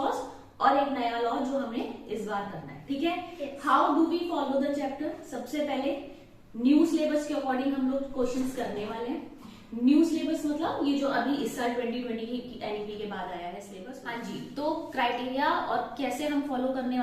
और एक नया लॉ जो हमें इस बार करना है। ठीक है, how do we follow the chapter? सबसे पहले न्यू सिलेबस के अकॉर्डिंग हम लोग क्वेश्चंस करने वाले हैं। न्यू सिलेबस मतलब ये जो अभी इस साल 2020 की एनईपी के बाद आया है सिलेबस। हाँ जी, तो क्राइटेरिया और कैसे हम फॉलो करने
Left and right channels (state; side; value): identical; both; correlation 1.00